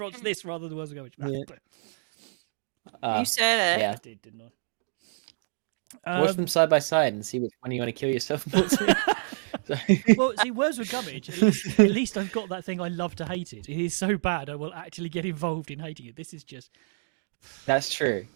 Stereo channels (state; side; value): silent; left; digital silence